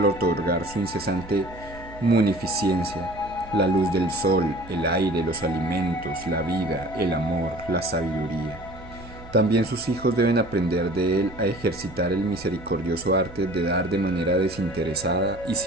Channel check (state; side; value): noise; right; hum, 18 dB below the sound